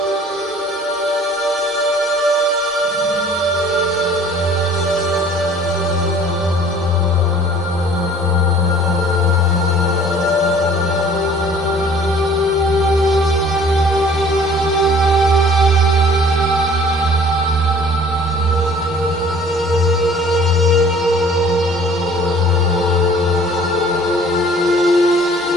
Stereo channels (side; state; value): both; normal; correlation 0.52